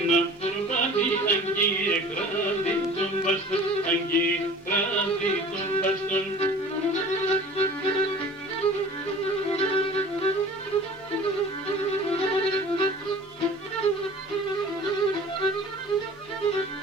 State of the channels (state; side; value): normal; both; correlation 0.44